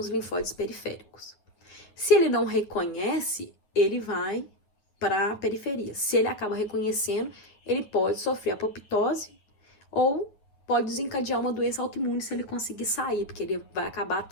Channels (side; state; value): right; late; 9.5 ms